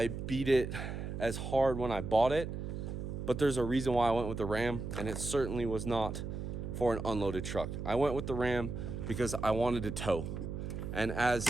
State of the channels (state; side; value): noise; right; hum, 5 dB below the sound